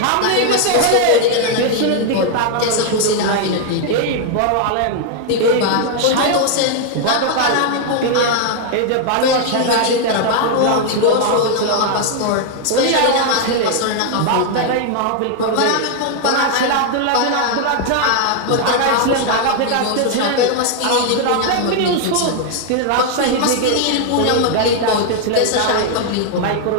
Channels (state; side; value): different; both; correlation 0.00